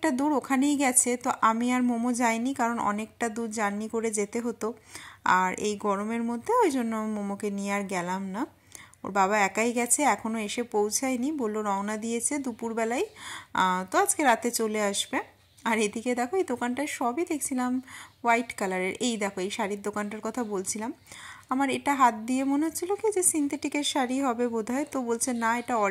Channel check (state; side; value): identical; both; correlation 1.00